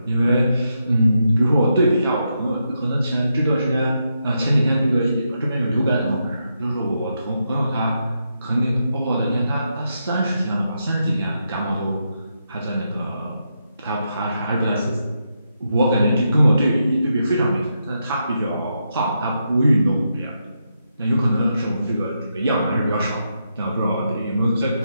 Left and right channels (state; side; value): inverted; both; correlation -0.83